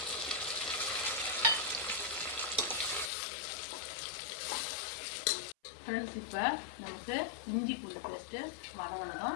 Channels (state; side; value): drops out; right; at 3.1 s